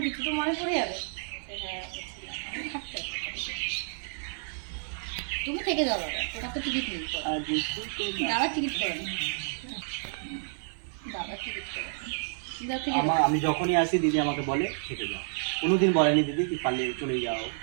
কিছু তো মনে পড়ে যাবে। হ্যাঁ থাকতে হবে। তুমি থেকে যাও দাদা, তোমার তো টিকিট নেই। দাদা টিকিট করে নি, দাদা টিকিট করে আমি যখনই আসি দিদি আমাকে বলে থেকে যাও, কোনোদিন বলেনি দিদি কি পারলে চলে যাও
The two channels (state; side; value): silent; left; 58 dB below the other